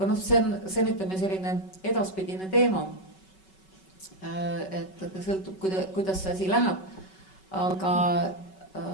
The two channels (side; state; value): right; late; 5.3 ms